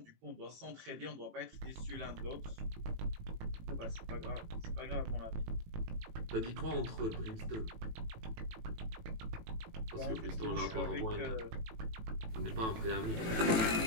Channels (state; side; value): late; left; 18 ms